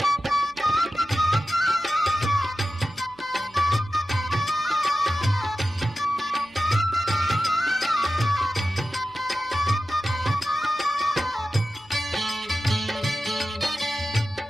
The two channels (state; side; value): noise; left; hum, 27 dB below the sound